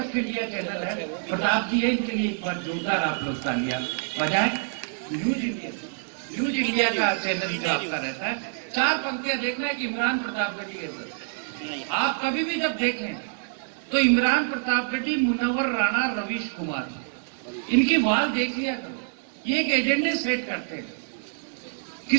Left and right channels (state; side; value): silent; left; digital silence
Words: इंडिया चैनल है, प्रताप जी है, इनके लिए एक बार जोरदार आप लोग तालियां बजाएं। न्यूज इंडिया, न्यूज इंडिया का चैनल जो आपका रहता है, 4 पंक्तियां देखना है कि इमरान प्रतापगढ़ी है सर। आप कभी भी जब देखें तो इमरान प्रतापगढ़ी, मुनव्वर राणा, रवीश कुमार, इनकी वाल देख लिया करो। ये एक एजेंडे सेट करते हैं।